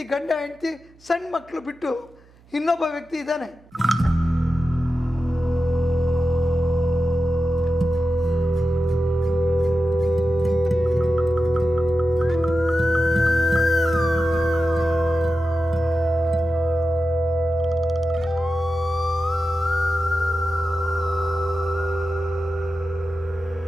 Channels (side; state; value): right; noise; hum, 28 dB below the sound